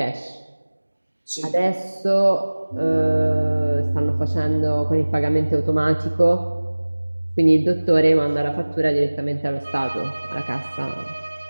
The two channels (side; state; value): both; inverted; correlation -1.00